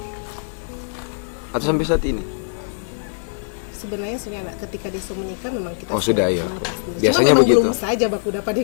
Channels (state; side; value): silent; right; 56 dB below the other